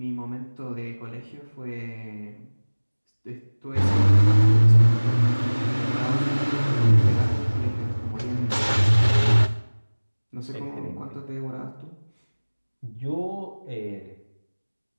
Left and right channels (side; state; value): both; inverted; correlation -1.00